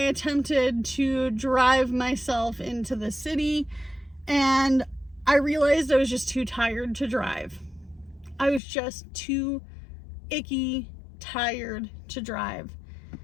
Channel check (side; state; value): right; drops out; at 8.6 s